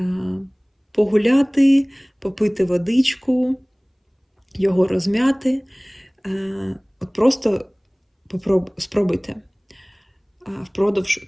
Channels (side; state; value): both; identical; correlation 1.00